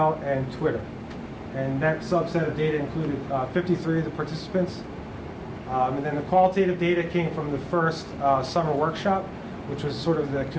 and Twitter. And that subset of data included 53 of the participants. And then the qualitative data came from the first summer workshop, which was sort of the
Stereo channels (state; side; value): identical; both; correlation 1.00